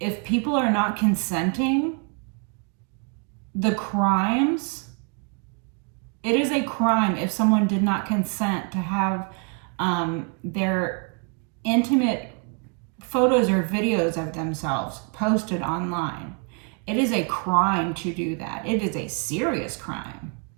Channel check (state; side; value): quieter; left; 36.0 dB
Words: people are not consenting, the crimes, it is a crime if someone did not consent to have their intimate photos or videos of themselves posted online. It is a crime to do that. It is a serious crime.